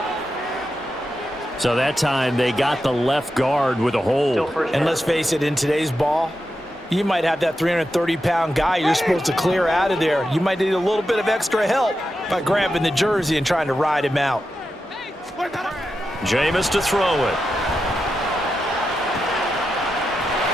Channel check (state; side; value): normal; both; correlation 0.89